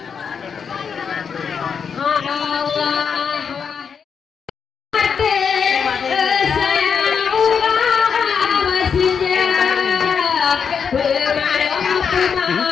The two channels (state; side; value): quieter; right; 6.5 dB